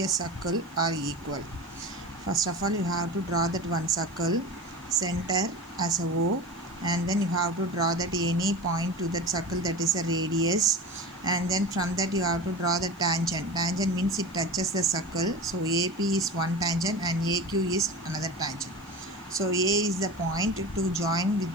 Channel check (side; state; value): left; noise; hiss, 29 dB below the sound